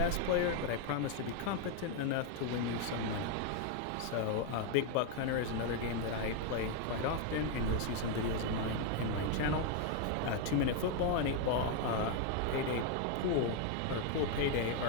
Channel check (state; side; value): different; both; correlation 0.01